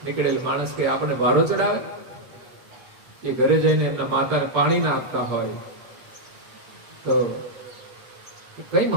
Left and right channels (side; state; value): left; late; 7.9 ms